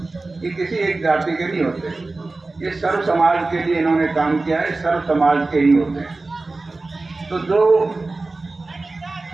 ये किसी एक जाति के नहीं होते, ये सर्व समाज के लिए इन्होंने काम किया है, सर्व समाज के ही होते हैं। तो जो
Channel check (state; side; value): quieter; left; 3.4 dB